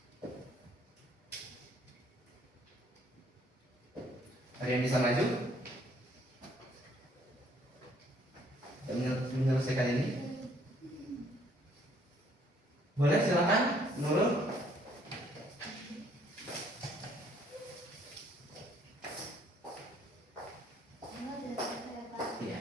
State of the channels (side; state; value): both; normal; correlation 0.64